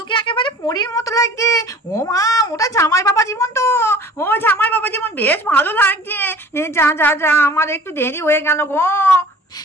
একেবারে পরীর মতো লাগছে। ও মা, ওটা জামাই বাবা জীবন তো। ও জামাই বাবা জীবন, বেশ ভালো লাগছে। যা যা যা, আমার একটু দেরি হয়ে গেল গো।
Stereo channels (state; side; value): normal; both; correlation 0.46